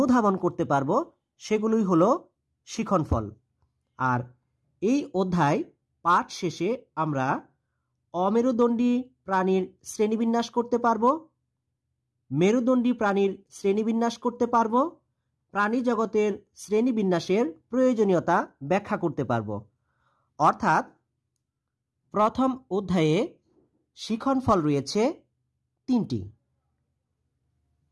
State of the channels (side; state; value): both; identical; correlation 1.00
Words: করতে পারবো, সেগুলোই হলো শিক্ষণফল। আর এই অধ্যায় পাঠ শেষে আমরা অমেরুদণ্ডী প্রাণীর শ্রেণীবিন্যাস করতে পারবো, মেরুদণ্ডী প্রাণীর শ্রেণীবিন্যাস করতে পারবো, প্রাণী জগতের শ্রেণীবিন্যাসের প্রয়োজনীয়তা ব্যাখ্যা করতে পারবো। অর্থাৎ প্রথম অধ্যায়ে শিক্ষণফল রয়েছে 3টি।